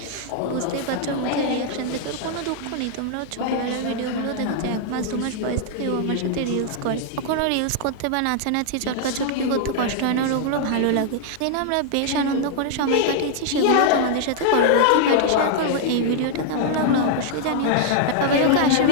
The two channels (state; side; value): different; both; correlation -0.01